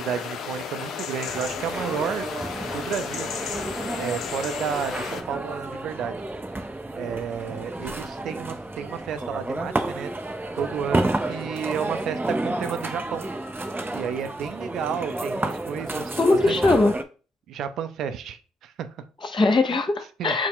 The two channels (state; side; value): normal; both; correlation 0.75